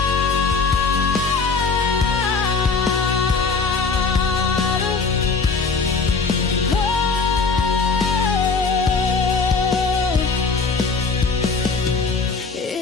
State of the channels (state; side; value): quieter; right; 4.5 dB